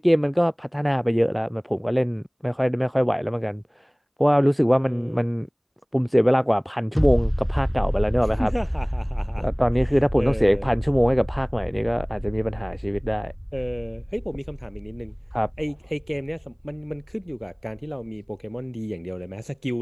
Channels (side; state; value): both; identical; correlation 1.00